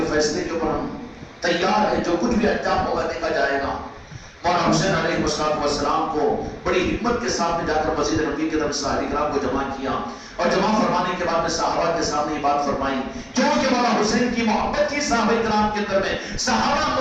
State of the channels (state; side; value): identical; both; correlation 1.00